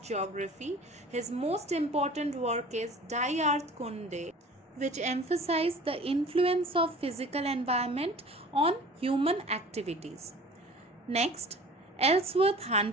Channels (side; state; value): both; normal; correlation 0.44